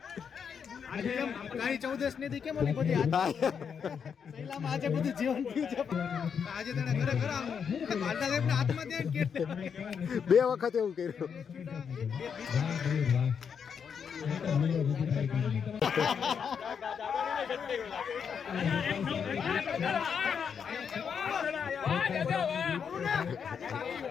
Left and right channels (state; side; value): quieter; right; 6.9 dB